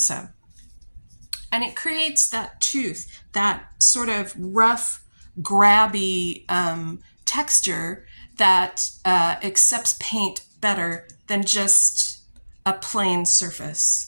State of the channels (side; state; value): both; inverted; correlation -1.00